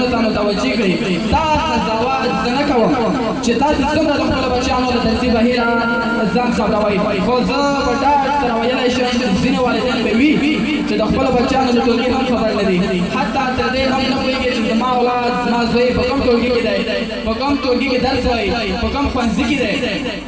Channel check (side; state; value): both; identical; correlation 1.00